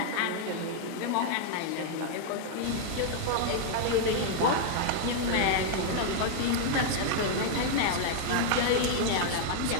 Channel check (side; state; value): both; different; correlation -0.01